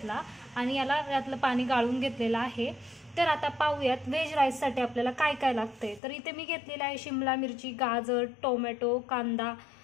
आणि याला यातलं पाणी गाळून घेतलेलं आहे। तर आता पाहूयात व्हेज राईससाठी आपल्याला काय काय लागते। तर इथे मी घेतलेला आहे शिमला मिरची, गाजर, टोमॅटो, कांदा,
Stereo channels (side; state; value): right; drops out; at 6.0 s